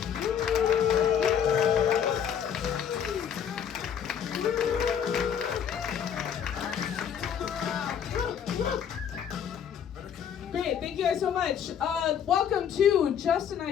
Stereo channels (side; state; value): right; quieter; 8.3 dB